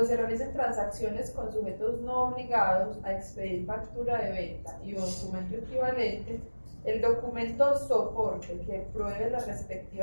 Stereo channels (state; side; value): inverted; both; correlation -1.00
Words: se realicen transacciones con sujetos no obligados a expedir factura de venta y un documento equivalente, el documento soporte que pruebe la